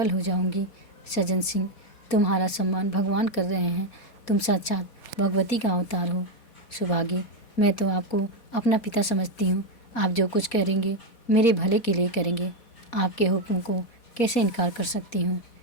हो जाऊंगी। सज्जन सिंह, तुम्हारा सम्मान भगवान कर रहे हैं। तुम साक्षात भगवती का अवतार हो। सुभागी, मैं तो आपको अपना पिता समझती हूँ। आप जो कुछ करेंगे मेरे भले के लिए करेंगे। आपके हुक्म को कैसे इनकार कर सकती हूँ?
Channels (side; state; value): right; late; 4.2 ms